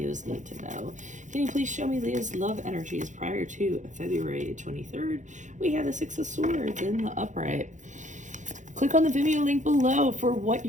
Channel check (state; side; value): late; left; 0.36 ms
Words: need to know? Can you please show me Leo's love energies prior to February 23rd? We have the Six of Swords in the upright. Click on the Vimeo link below for what